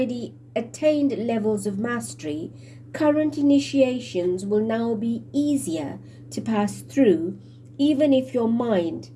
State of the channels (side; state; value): both; identical; correlation 1.00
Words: attained levels of mastery, current initiations will now be easier to pass through, even if your mind